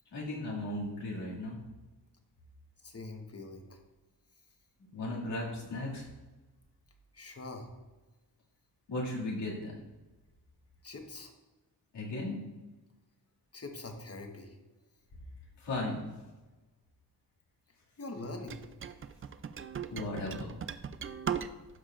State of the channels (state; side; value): normal; both; correlation 0.26